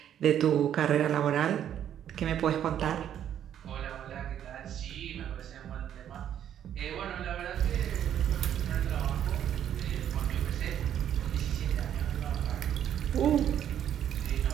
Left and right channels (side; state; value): left; quieter; 10.1 dB